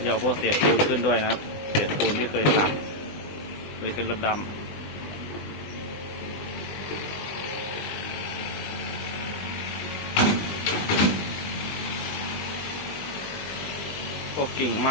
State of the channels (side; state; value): right; late; 20 ms